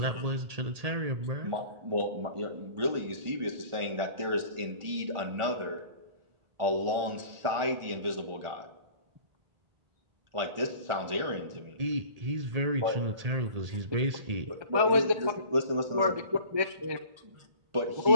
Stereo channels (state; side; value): late; left; 1.4 ms